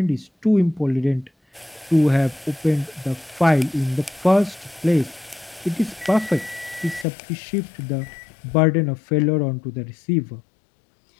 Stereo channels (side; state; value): right; drops out; at 7.1 s